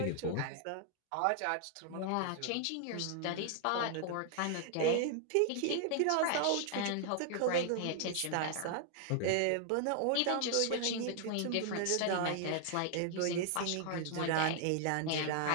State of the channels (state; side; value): different; both; correlation 0.00